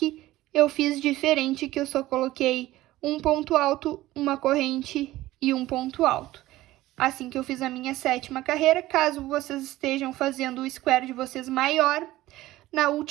eu fiz diferente, que eu só coloquei um ponto alto, uma corrente e um ponto alto. Assim que eu fiz a minha sétima carreira, caso vocês estejam fazendo o square de vocês maior, na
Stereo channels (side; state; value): left; quieter; 16.4 dB